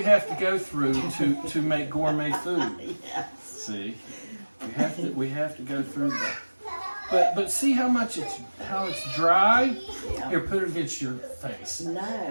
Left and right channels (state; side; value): inverted; both; correlation -1.00